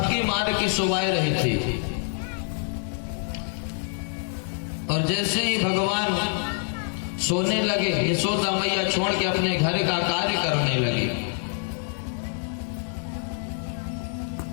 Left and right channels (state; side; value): silent; right; 61 dB below the other